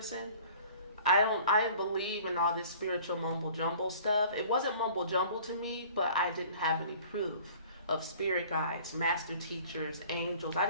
I didn't believe in all this spiritual mumble jumble stuff. It wasn't mumble jumble to me, but I didn't have any proof of spirit guides, master teachers, angels. I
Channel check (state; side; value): inverted; both; correlation -0.49